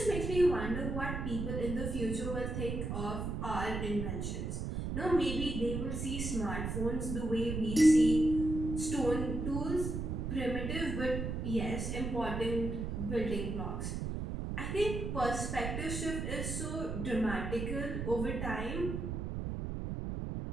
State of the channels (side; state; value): right; noise; rumble, 3 dB below the sound